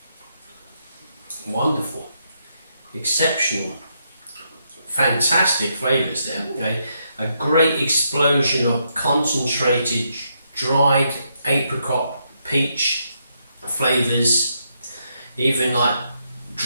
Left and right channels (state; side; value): inverted; both; correlation -0.78